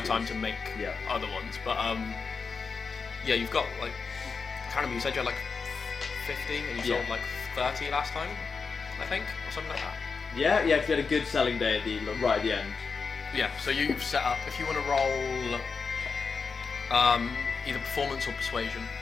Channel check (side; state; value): right; quieter; 5.1 dB